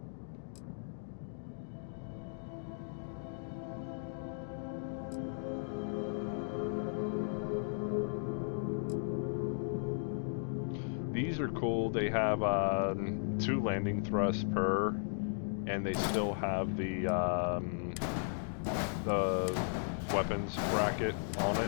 These are cool. They have 2 landing thrusts per, and they still have the weapons bracket on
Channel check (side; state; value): right; silent; digital silence